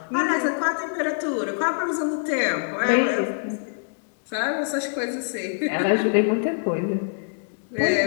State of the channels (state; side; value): silent; right; digital silence